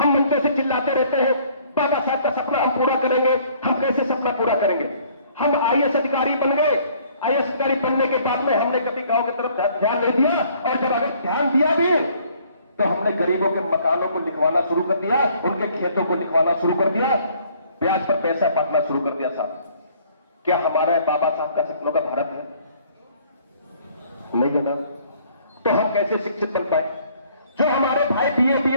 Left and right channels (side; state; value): both; inverted; correlation -0.59